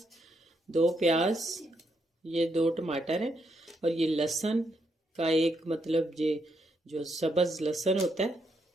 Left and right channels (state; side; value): normal; both; correlation 0.78